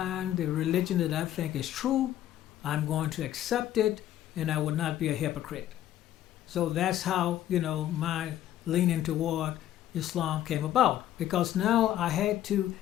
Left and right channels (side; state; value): right; quieter; 12.4 dB